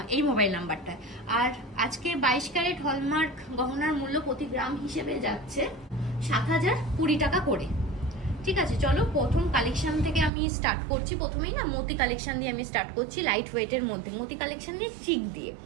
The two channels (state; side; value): drops out; left; at 10.3 s